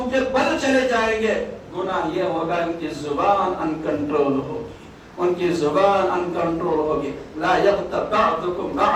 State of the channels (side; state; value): both; identical; correlation 1.00